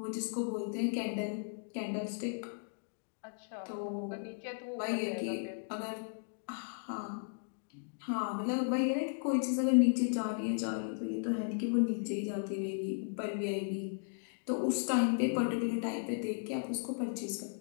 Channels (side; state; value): right; silent; digital silence